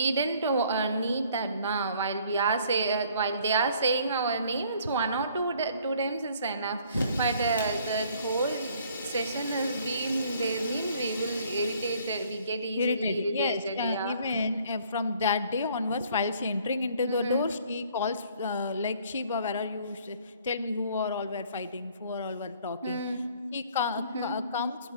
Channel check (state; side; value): inverted; both; correlation -0.59